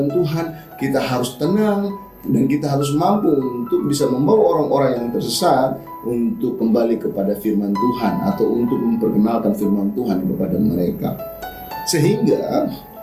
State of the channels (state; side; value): identical; both; correlation 1.00